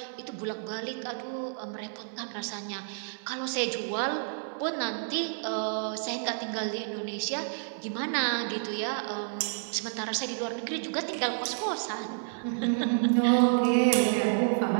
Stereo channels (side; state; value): left; silent; 58 dB below the other